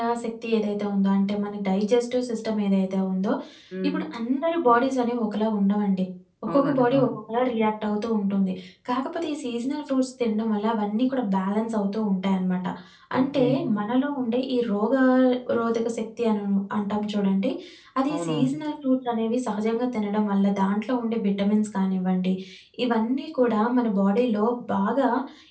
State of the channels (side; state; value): both; identical; correlation 1.00